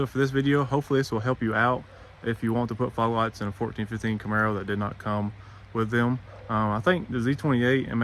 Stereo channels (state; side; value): identical; both; correlation 1.00